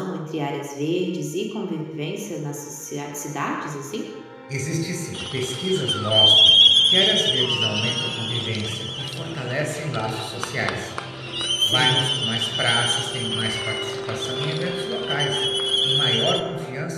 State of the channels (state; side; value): identical; both; correlation 1.00